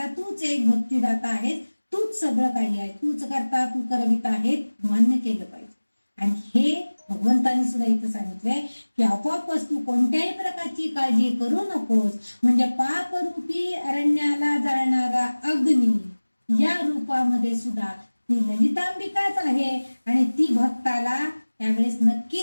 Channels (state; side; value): inverted; both; correlation -1.00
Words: तूच एक भक्तिदाता आहेस, तूच सगळं काही आहे, तूच करता तू करविता आहे मान्य केलं पाहिजे. आणि हे भगवंतांनी सुद्धा इथं सांगितलंय की आपोआपच तू कोणत्याही प्रकारची काळजी करू नकोस. म्हणजे पापरूपी अरण्याला जाळणारा अग्नी या रूपामध्ये सुद्धा ती ललितांबिकाच आहे आणि ती भक्ताला त्यावेळेस